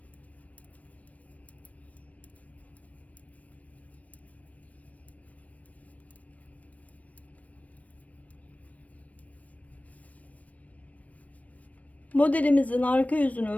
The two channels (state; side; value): late; right; 0.068 ms